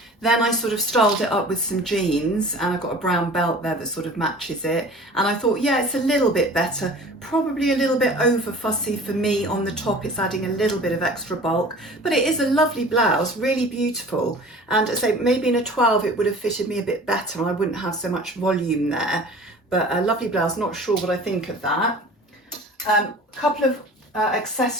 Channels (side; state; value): both; normal; correlation 0.43